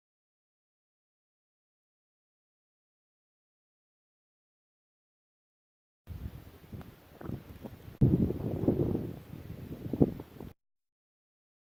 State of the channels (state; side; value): identical; both; correlation 1.00